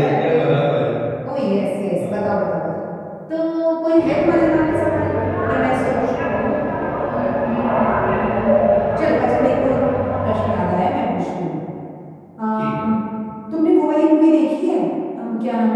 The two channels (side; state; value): both; identical; correlation 1.00